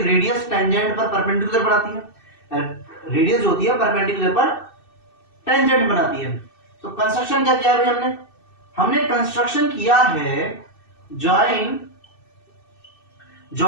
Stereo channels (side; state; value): right; late; 2.6 ms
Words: रेडियस टेंजेंट पर परपेंडिकुलर बनाती है, रेडियस जो होती है परपेंडिकुलर पर टेंजेंट बनाती है। तो कंस्ट्रक्शन क्या किया है भाई हमने, हमने कंस्ट्रक्शन किया है, ज्वाइन